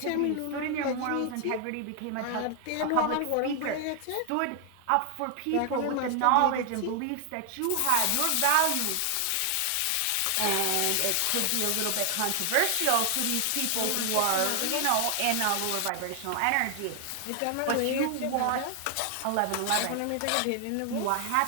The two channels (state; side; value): different; both; correlation 0.00